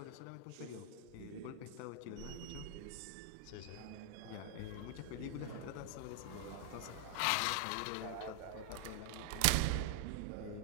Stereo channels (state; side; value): different; both; correlation -0.01